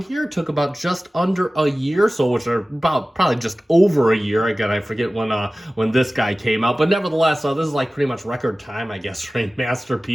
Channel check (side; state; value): both; normal; correlation 0.97